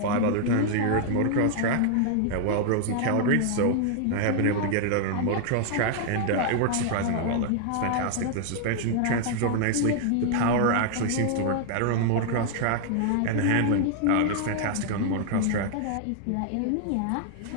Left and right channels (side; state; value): both; different; correlation 0.00